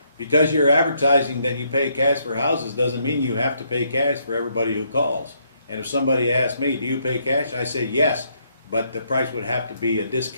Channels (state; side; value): inverted; both; correlation -0.73